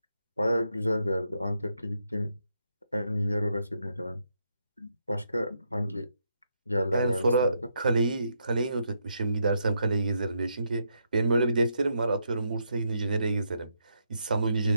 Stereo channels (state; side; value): inverted; both; correlation -0.79